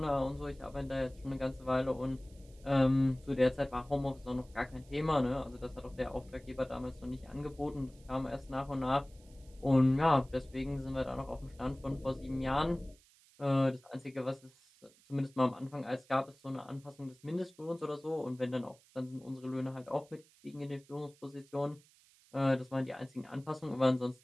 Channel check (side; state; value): right; noise; hiss, 28 dB below the sound